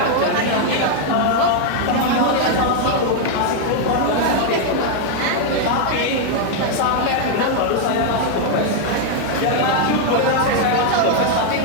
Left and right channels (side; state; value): both; different; correlation 0.00